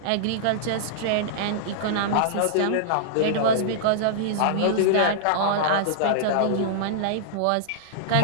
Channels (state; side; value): different; both; correlation -0.02